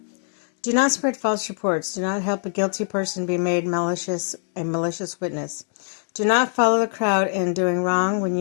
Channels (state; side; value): silent; right; digital silence